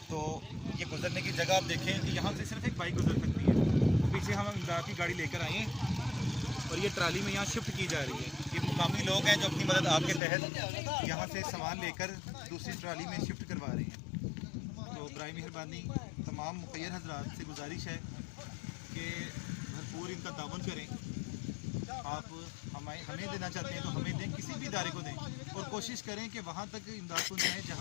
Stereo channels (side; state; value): right; drops out; at 10.2 s